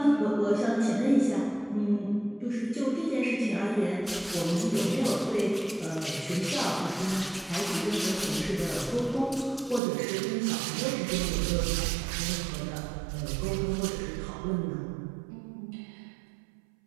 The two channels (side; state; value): left; drops out; at 9.8 s